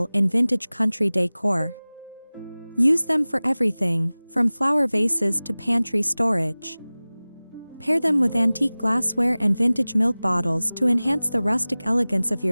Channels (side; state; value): both; inverted; correlation -0.99